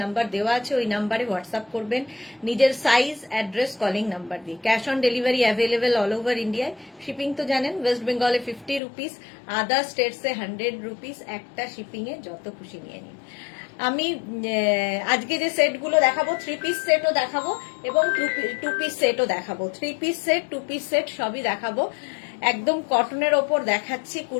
নাম্বার দেওয়া আছে, ওই নাম্বারে হোয়াটসঅ্যাপ করবেন নিজের সাইজ, অ্যাড্রেস, কলিং নাম্বার দিয়ে। Cash on delivery available all over ইন্ডিয়ায়। শিপিং তো জানেন, ওয়েস্ট বেঙ্গলে 50 রুপিস, আদার স্টেটসে 100 রুপিস। একটা শিপিংয়ে যত খুশি নিয়ে নিন। আমি আজকে যে সেটগুলো দেখাবো, 3 পিস সেটও দেখাবো এবং 2 পিস সেটও দেখাবো। 3 পিস সেট, 2 পিস সেট সবই দেখাবো। একদম কটনের ওপর দেখাচ্ছি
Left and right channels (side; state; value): right; drops out; at 8.8 s